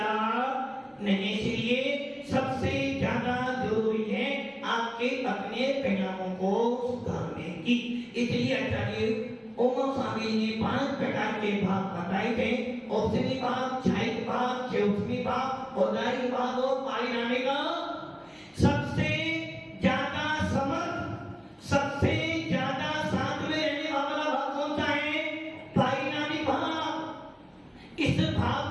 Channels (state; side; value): identical; both; correlation 1.00